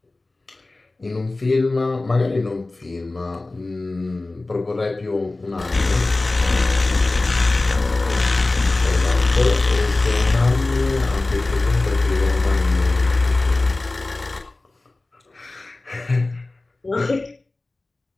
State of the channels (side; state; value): right; quieter; 3.1 dB